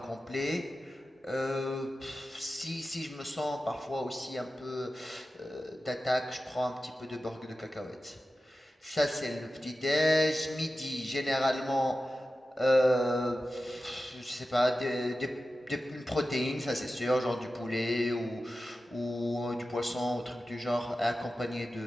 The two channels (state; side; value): normal; both; correlation 0.94